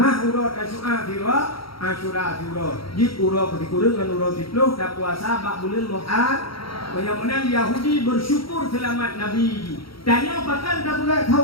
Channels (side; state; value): right; late; 0.75 ms